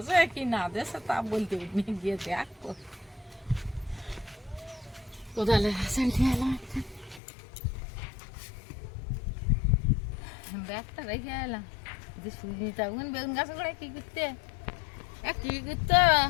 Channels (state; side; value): drops out; right; at 7.2 s